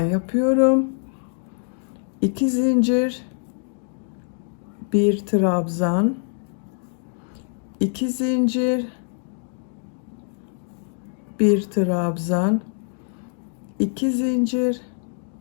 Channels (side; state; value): right; silent; 57 dB below the other